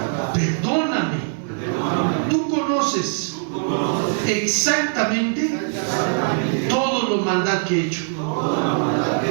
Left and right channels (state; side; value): silent; left; digital silence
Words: Perdóname. Tú conoces exactamente todo lo maldad que he hecho